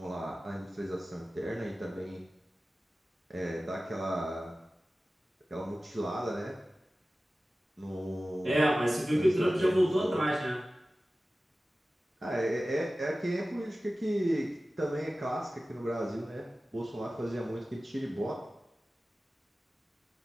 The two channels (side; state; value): both; normal; correlation 0.96